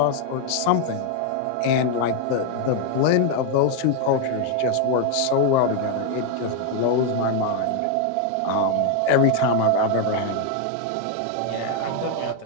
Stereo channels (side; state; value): both; different; correlation 0.01